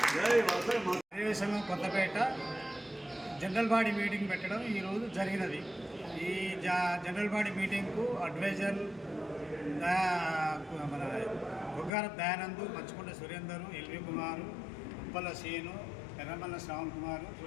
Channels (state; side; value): drops out; right; at 11.9 s